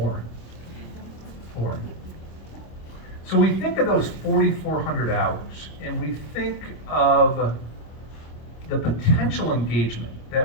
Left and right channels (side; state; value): right; late; 26 ms